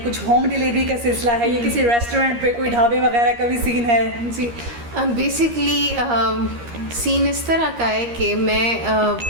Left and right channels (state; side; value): late; left; 13 ms